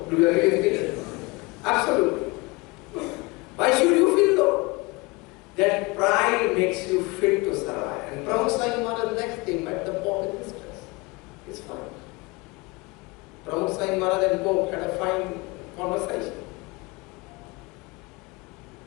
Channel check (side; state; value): right; quieter; 24.9 dB